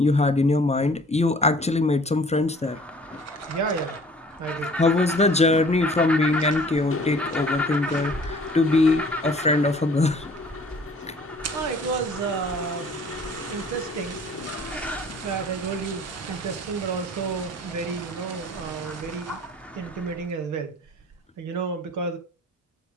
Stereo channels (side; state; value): both; normal; correlation 0.51